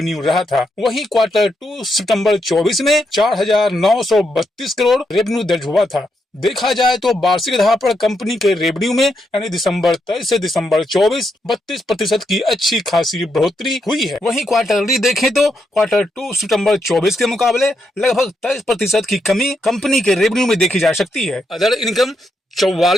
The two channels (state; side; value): normal; both; correlation 0.81